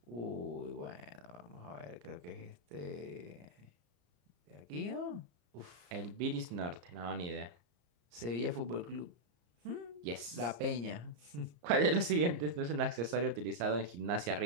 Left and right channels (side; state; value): left; late; 34 ms